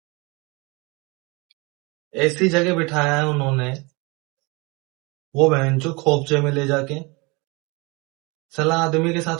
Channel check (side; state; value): left; quieter; 27.0 dB